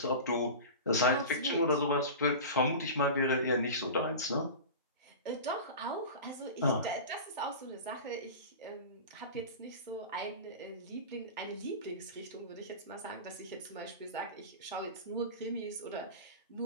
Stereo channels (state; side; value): inverted; both; correlation -0.30